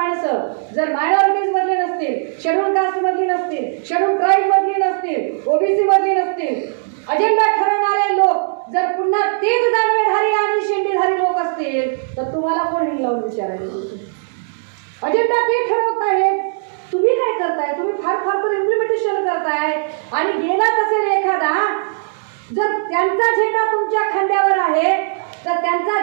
जर मायनॉरिटीज मधले नसतील, शेड्यूल कास्ट मधली नसतील, शेड्यूल ट्राईब मधली नसतील, ओबीसी मधली नसतील, अजेंडा ठरवणारे लोक जर पुन्हा तेच दानवेधारी आणि शेंडीधारी लोक असतील तर तुम्हाला कोण हिंगलावून विचारायचं? अजेंडा ते ठरवत आहेत, तुम्ही काय करताय? तुम्ही फार फार तर इम्प्लिमेंटेशन करताय. आणि गेलाच असेल एखादा, जर त्यांचा झेंडा तुमच्या खांद्यावर आहे तर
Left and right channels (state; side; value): silent; left; digital silence